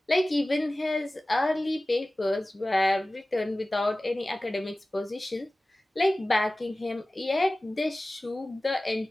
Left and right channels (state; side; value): normal; both; correlation 0.97